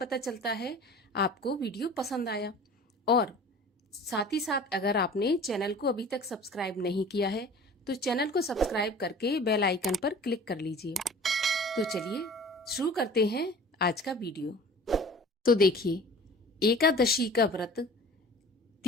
चलता है आपको वीडियो पसंद आया। और साथ ही साथ अगर आपने चैनल को अभी तक सब्सक्राइब नहीं किया है तो चैनल को सब्सक्राइब करके बेल आइकन पर क्लिक कर लीजिए। तो चलिए शुरू करते हैं आज का वीडियो। तो देखिए, एकादशी का व्रत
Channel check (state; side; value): normal; both; correlation 0.43